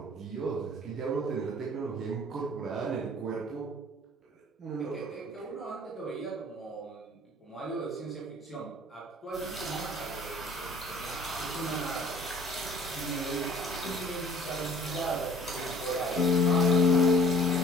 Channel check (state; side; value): normal; both; correlation 0.52